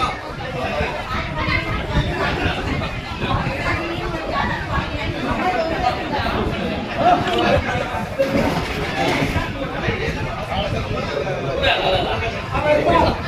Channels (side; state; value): both; identical; correlation 1.00